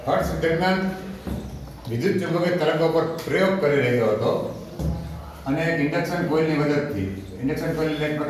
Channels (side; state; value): both; identical; correlation 1.00